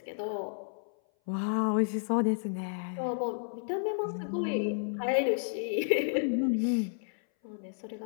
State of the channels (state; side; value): silent; right; 57 dB below the other